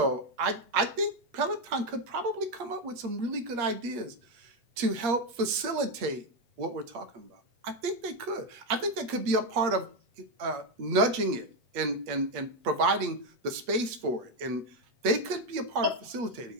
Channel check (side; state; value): left; late; 8.5 ms